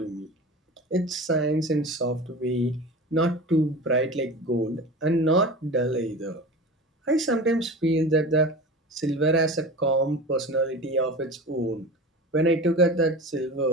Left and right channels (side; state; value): both; normal; correlation 0.33